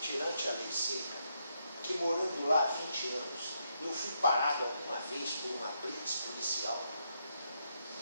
tirante a lei seca, que morando lá há 20 anos, eu fui parado alguma vez por uma blitz policial?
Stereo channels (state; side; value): inverted; both; correlation -0.78